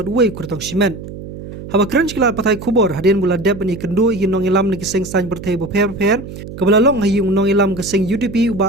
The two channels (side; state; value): right; noise; hum, 12 dB below the sound